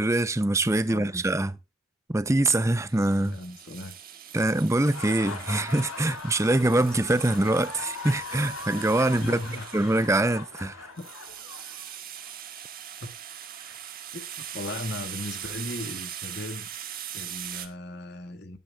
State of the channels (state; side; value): normal; both; correlation 0.73